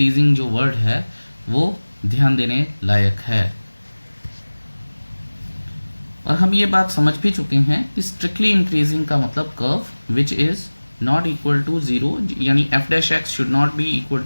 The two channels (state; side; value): inverted; both; correlation -1.00